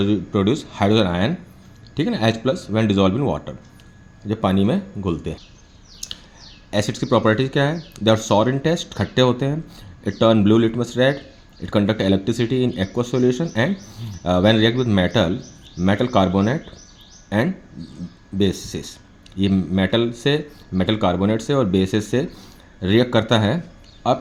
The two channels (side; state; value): both; identical; correlation 1.00